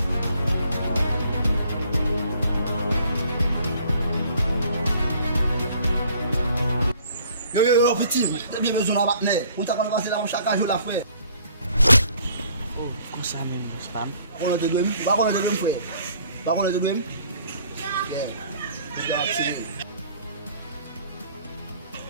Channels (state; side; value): inverted; both; correlation -0.58